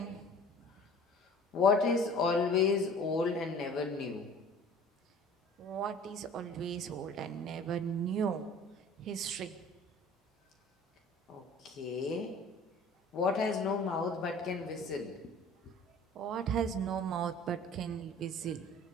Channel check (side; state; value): both; normal; correlation 0.46